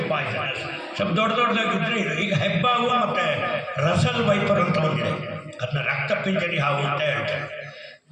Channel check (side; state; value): both; identical; correlation 1.00